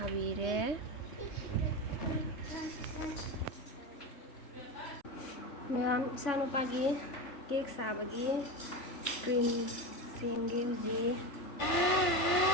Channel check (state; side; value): late; right; 3.3 ms